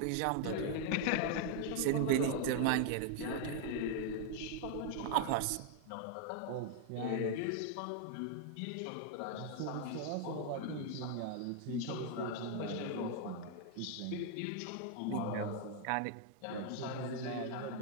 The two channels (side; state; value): both; different; correlation 0.00